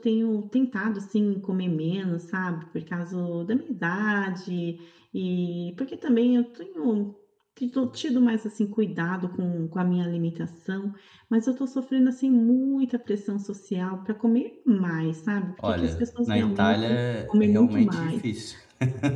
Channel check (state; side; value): identical; both; correlation 1.00